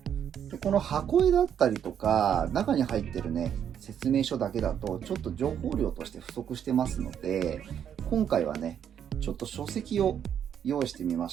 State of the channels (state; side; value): quieter; left; 8.9 dB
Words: でこの箱絵だったりとか中に入ってるね説明書だけだとちょっと情報量として不足してますので、今回はねちょっと書籍を用意してみま